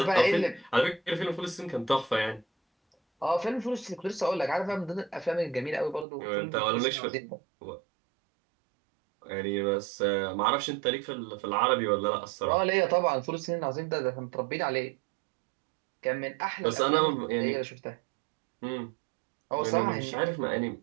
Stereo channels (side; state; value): left; drops out; at 6.1 s